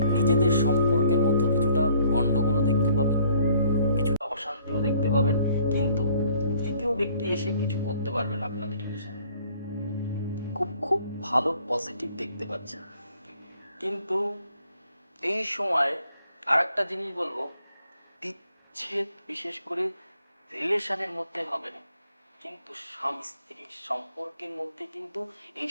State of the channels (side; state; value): both; inverted; correlation -0.60